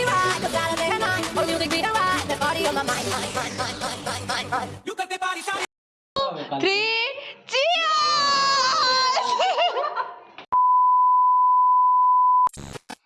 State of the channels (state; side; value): identical; both; correlation 1.00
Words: right, cause I day and night. For music be the right, that body on my mind, mind. You got the body shawty. 3, cheers!